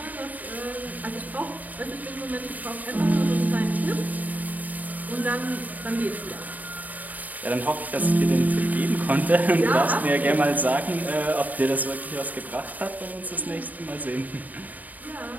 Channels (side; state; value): left; late; 0.079 ms